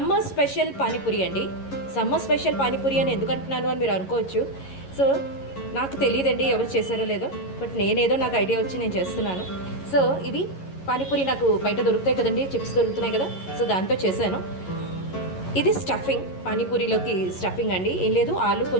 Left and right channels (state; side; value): late; right; 11 ms